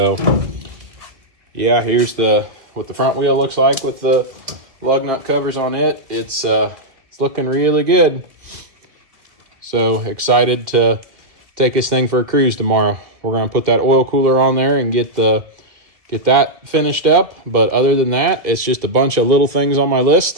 yeah, here's what the front wheel looks like with the lug nut covers on it. It's looking really good. So excited to take this thing for a cruise tomorrow. We're gonna put that oil cooler on there and get that finished up. But other than that, it's just a bunch of little things on my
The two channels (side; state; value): left; late; 2.3 ms